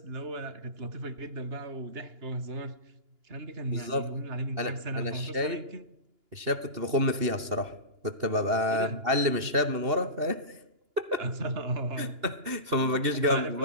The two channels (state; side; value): late; left; 2.9 ms